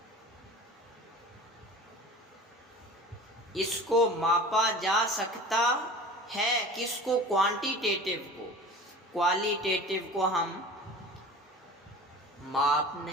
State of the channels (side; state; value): both; normal; correlation 0.39